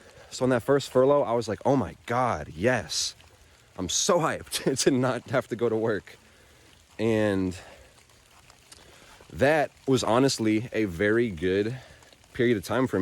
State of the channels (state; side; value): identical; both; correlation 1.00